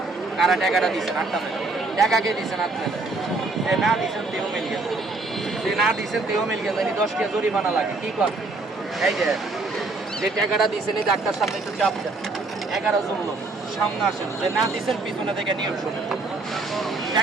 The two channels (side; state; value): left; quieter; 3.4 dB